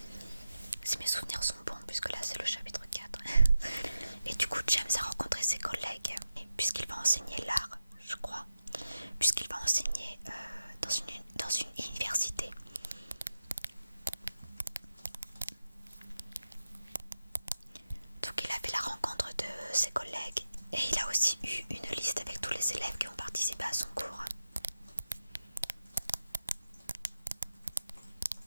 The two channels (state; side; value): inverted; both; correlation -0.90